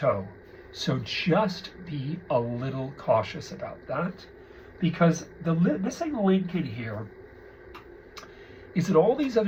So just be a little cautious about that, because the missing link in here is that all these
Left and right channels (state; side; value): identical; both; correlation 1.00